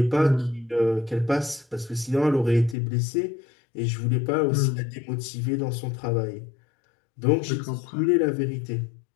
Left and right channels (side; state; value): right; drops out; at 2.8 s